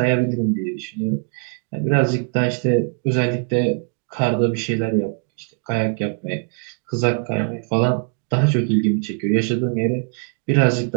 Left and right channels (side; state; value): left; quieter; 39.6 dB